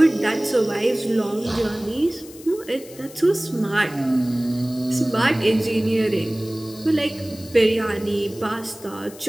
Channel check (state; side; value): noise; left; hiss, 19 dB below the sound